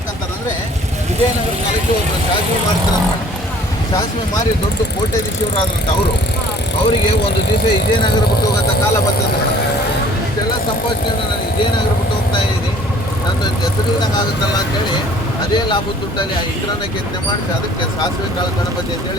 ವಿಜಯನಗರ ಕಾಲಕ್ಕೆ ಒಬ್ಬರು ಸಾಸಿವೆ ಮಾಡ್ತಾರೆ ಮೇಡಮ್. ಸಾಸಿವೆ ಮಾರಿ ದೊಡ್ಡ ಕೋಟ್ಯಾಧೀಶರಾದ್ರಂತ ಅವರಿಗೆ ಒಂದು ದಿವಸ ವಿಜಯನಗರ ಬಿಟ್ಟು ಹೋಗೋಂಥ ಕಾಲ ಬರ್ತದೆ ಮೇಡಮ್. ಇಷ್ಟೆಲ್ಲ ಸಂಪಾದನೆ ನಾನು ವಿಜಯನಗರ ಬಿಟ್ಟು ಹೋಗ್ತಾ ಇದ್ದೀನಿ, ನನ್ನ ಹೆಸರಿಲ್ದಂಗೆ ಆಗುತ್ತಲ್ಲ ಅಂತೇಳಿ ಅದೇ ಲಾಭದ ದುಡ್ಡಲ್ಲಿ ಆ ಇಂದ್ರನ ಕೆತ್ತನೆ ಮಾಡಿಸಿ ಅದಕ್ಕೆ ಸಾಸಿವೆ ಕಾಳು ಗಣಪತಿ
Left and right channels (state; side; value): normal; both; correlation 0.53